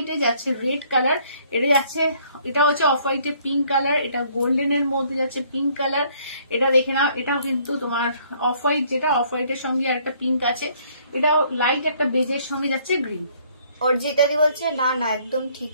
যাচ্ছে রেড কালার। এটা যাচ্ছে, এটা হচ্ছে অফ হোয়াইটে পিঙ্ক কালার। এটা গোল্ডেনের মধ্যে যাচ্ছে পিঙ্ক কালার। এটা দেখে নাও, এটাও কিন্তু তোমার অফ হোয়াইট, যেটা অফ হোয়াইটের সঙ্গে আর একটা পিঙ্ক আছে। এটাও লাইট একটা বেজের সঙ্গে যাচ্ছে গ্রিন। অর্জিতাদি বলছে না না একদম ঠিক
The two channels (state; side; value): inverted; both; correlation -0.63